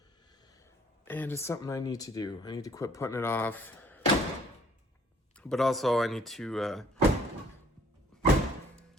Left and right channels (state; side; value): normal; both; correlation 0.59